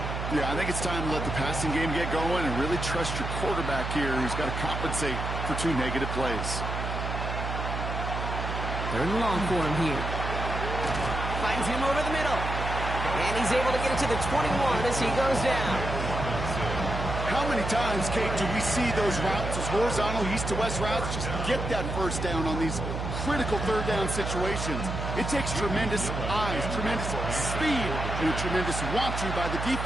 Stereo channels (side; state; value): right; noise; hum, 4 dB below the sound